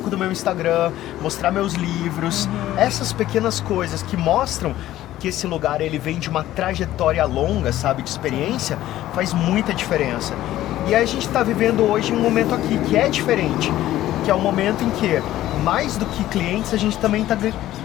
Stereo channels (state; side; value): quieter; right; 14.2 dB